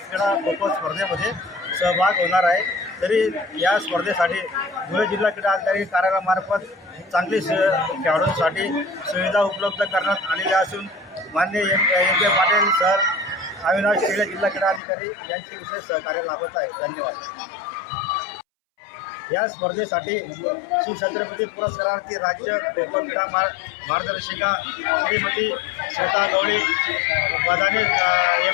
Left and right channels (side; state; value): right; drops out; at 14.8 s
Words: खो खो स्पर्धेमध्ये सहभाग होणार आहे। तरी या स्पर्धेसाठी धुळे जिल्हा क्रीडा अधिकारी कार्यालयामार्फत चांगली खेळाडूंसाठी सुविधा उपलब्ध करण्यात आलेल्या असून माननीय M.K. पाटील सर, अविनाश खेळे जिल्हा क्रीडा अधिकारी यांचे विशेष सहकार्य लाभत आहे। धन्यवाद। या स्पर्धेसाठी शिवछत्रपती पुरस्कारार्थी राज्य खो खो क्रीडा मार्गदर्शिका श्रीमती श्वेता गवळी,